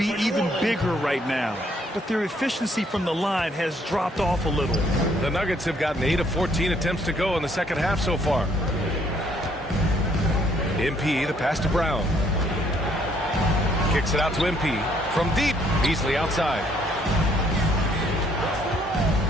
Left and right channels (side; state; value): both; normal; correlation 0.66